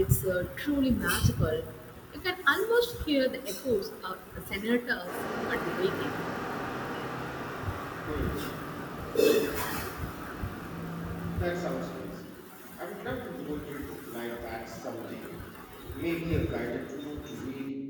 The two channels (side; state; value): both; identical; correlation 1.00